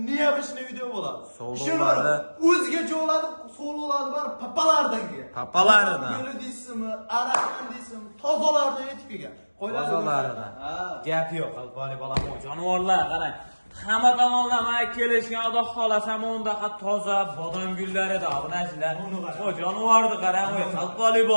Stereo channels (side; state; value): both; inverted; correlation -1.00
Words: niyabishni video bo'ladi. So'loladi. O'zgacha bo'ladi, so'loladi bar papalardan kelgan. Papalaridan. Guli deysizmi, arakan deysizmi, tozalardan yetib kelgan. Tozalardan. Gap yo'q qalpoqli bola, jonivorlar qarang. Hamma tomonlama kelishgan Xudo xolasa mondaqa toza bodom gullari-da obunachilar. O jonivorni qarang, qalpoqli